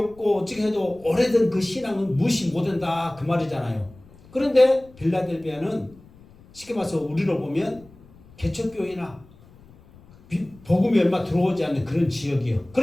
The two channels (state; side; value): noise; left; rumble, 25 dB below the sound